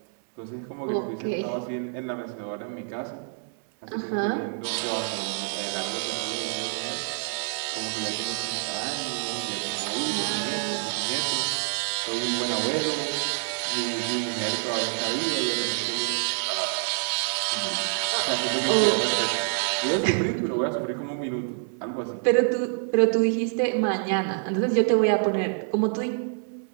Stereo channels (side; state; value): left; silent; 60 dB below the other